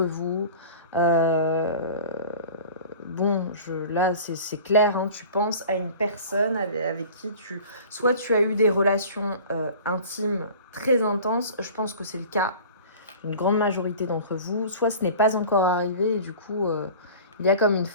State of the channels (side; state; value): both; inverted; correlation -0.41